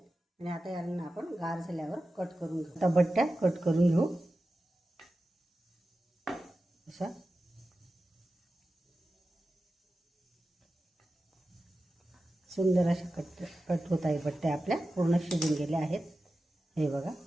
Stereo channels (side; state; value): both; normal; correlation 0.93